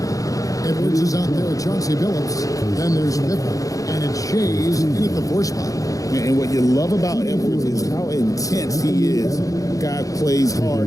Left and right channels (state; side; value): late; right; 0.17 ms